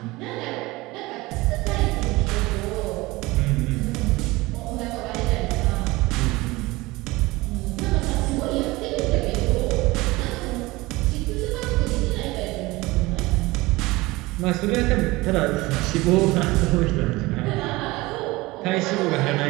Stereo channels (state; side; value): quieter; left; 21.1 dB